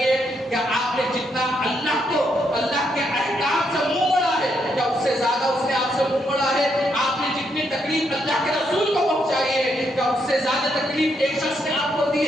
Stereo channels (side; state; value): both; normal; correlation 0.77